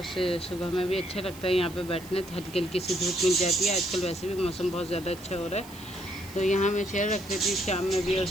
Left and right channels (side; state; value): right; noise; hiss, 19 dB below the sound